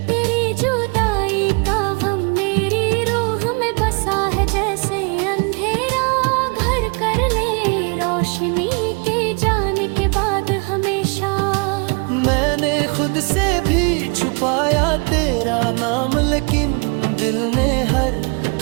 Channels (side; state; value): left; quieter; 33.7 dB